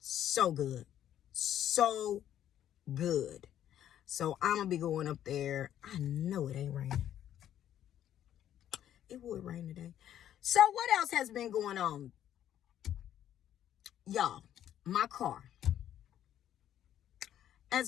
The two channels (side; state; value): right; quieter; 11.0 dB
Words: good. So good. So I'm going to be going up there. I know it ain't raining. It would rain today. So what else has been going on? Y'all, my car.